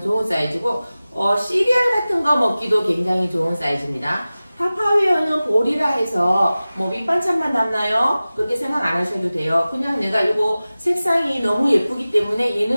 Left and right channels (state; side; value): inverted; both; correlation -0.97